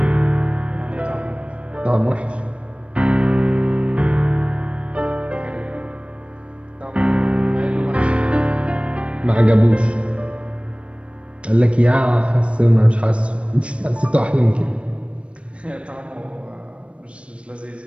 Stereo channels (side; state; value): left; late; 0.061 ms